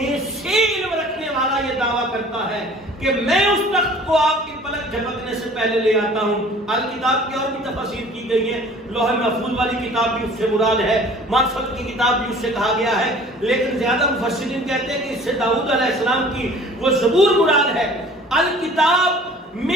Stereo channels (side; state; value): both; normal; correlation 0.48